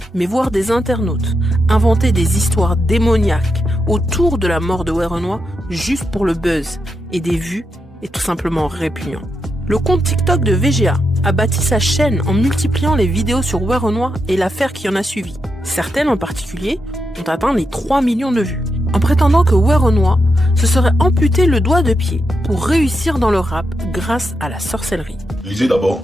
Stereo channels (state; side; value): normal; both; correlation 0.84